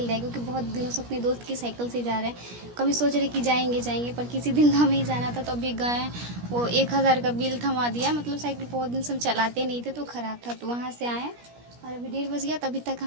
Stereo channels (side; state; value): left; late; 17 ms